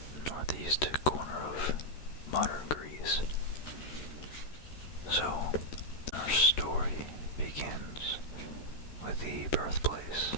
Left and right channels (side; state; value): right; late; 13 ms